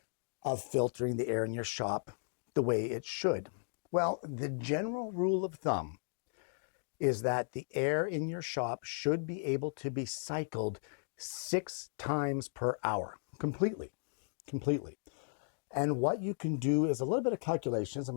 of filtering the air in your shop the way it should? Well, the general rule of thumb is that the air in your shop should be able to be cycled 6 times per hour, completely. And what you can do is a little bit of calculations. I'm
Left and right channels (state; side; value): silent; right; digital silence